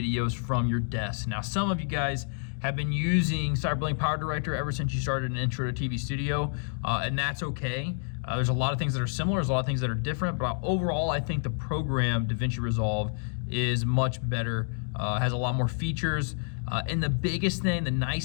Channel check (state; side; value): silent; right; digital silence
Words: from your desk. Now, some of you guys have been using CyberLink Power Director ever since you started an Intro to TV Studio, and that's okay. There's a lot of things that are similar, there's a lot of things that are different, but overall, I think the program Davinci Resolve is much better, has a lot more features, and the biggest thing, the